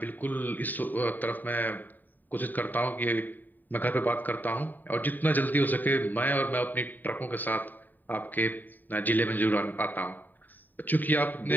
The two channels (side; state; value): right; late; 0.088 ms